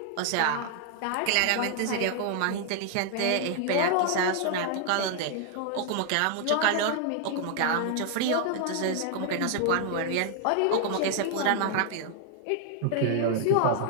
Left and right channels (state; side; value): different; both; correlation 0.00